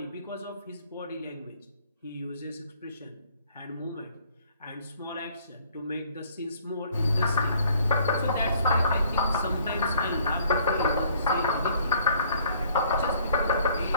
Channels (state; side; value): inverted; both; correlation -0.60